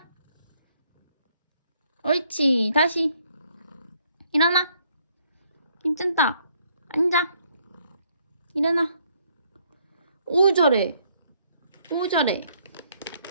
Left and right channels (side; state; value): both; inverted; correlation -0.68